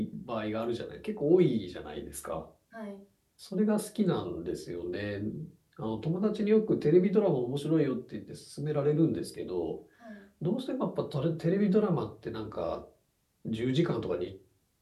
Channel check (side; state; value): both; identical; correlation 1.00